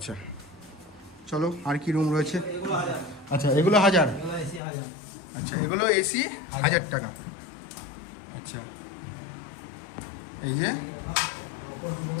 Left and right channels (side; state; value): right; drops out; at 4.6 s